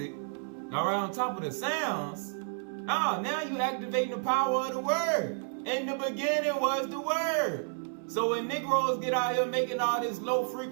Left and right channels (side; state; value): left; silent; 57 dB below the other